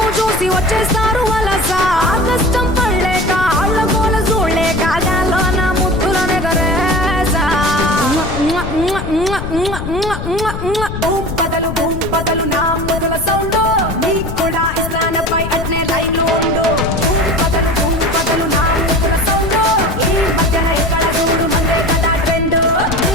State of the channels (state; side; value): noise; left; rumble, 7 dB below the sound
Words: చూసి వచ్చేస్తారు వలస ఆ కష్టం పడలేక ఆళ్ళ గోల చూడలేక గాల్లో నా ముద్దులనే గరేసా బూమ్ బదలు నా మొదల సౌండ్ నీకు కూడా ఇస్లానపై అట్నే లైన్ ఉండు బూమ్ బదలు నా మొదల సౌండ్ ఈ మధ్యన ఎక్కడ చూడు మందే కదా ట్రెండ్